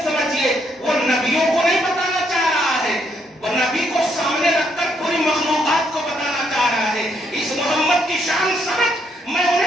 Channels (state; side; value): normal; both; correlation 0.74